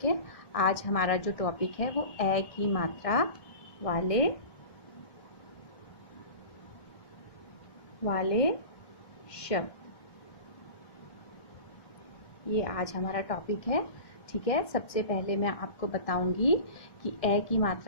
है, आज हमारा जो topic है वो ए की मात्रा वाले शब्द, ये आज हमारा टॉपिक है. ठीक है, सबसे पहले मैं आपको बताऊंगी कि ए की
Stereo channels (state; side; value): late; right; 1.7 ms